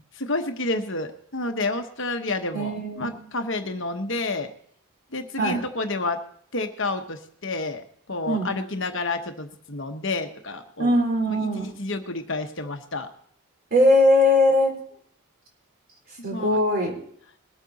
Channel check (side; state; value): both; normal; correlation 0.42